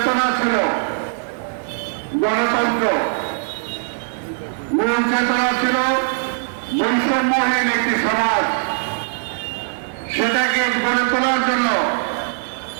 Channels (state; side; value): silent; left; 65 dB below the other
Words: ছিল গণতন্ত্র, মূল চেতনা ছিল বৈষম্যহীন একটি সমাজ, সেটাকে গড়ে তোলার জন্য